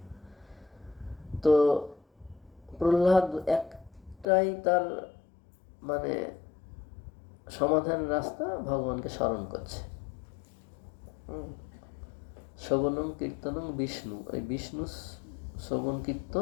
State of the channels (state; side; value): drops out; right; at 4.2 s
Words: তো প্রহ্লাদ একটাই তার মানে সমাধান রাস্তা, ভগবানকে স্মরণ করছে। শ্রবণং কীর্তনং বিষ্ণু, ওই বিষ্ণু শ্রবণ